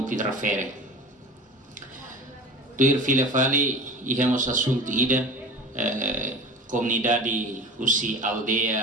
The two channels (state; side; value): normal; both; correlation 0.35